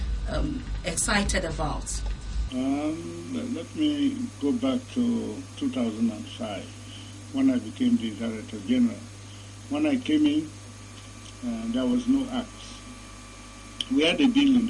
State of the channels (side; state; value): both; identical; correlation 1.00